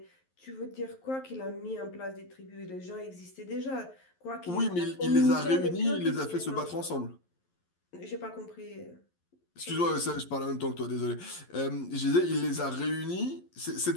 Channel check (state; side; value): late; right; 11 ms